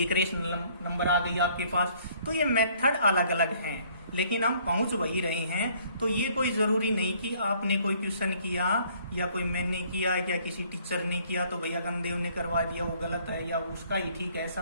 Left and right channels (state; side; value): inverted; both; correlation -0.61